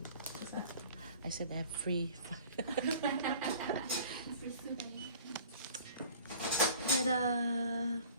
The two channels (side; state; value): both; inverted; correlation -0.47